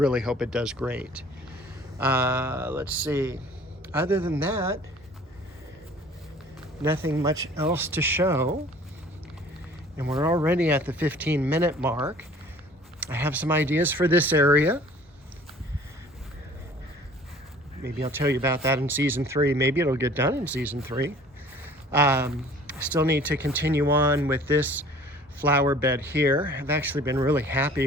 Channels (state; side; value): normal; both; correlation 0.50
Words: hope it does great. Let's see. Other than that, nothing much else to show. And we're already at the 15-minute mark. I have some ideas for this area. Maybe I'll tell you about that in season 3. Maybe it'll get done in season 3. Still need to continue on with this flower bed here. I've actually been really